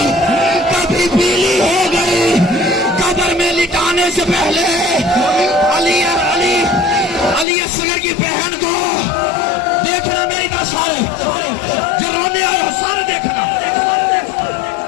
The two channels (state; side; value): drops out; right; at 7.5 s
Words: कभी पीली हो गई। कब्र में लिटाने से पहले अली असगर की बहन को देखना, मेरी तरह सारे जो रोने आए हो सारे देखना।